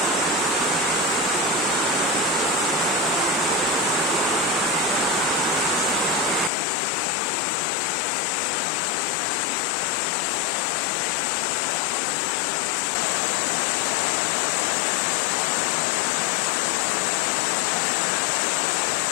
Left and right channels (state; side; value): drops out; right; at 6.5 s